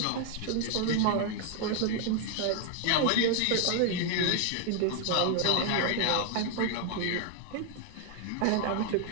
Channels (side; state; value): both; different; correlation 0.00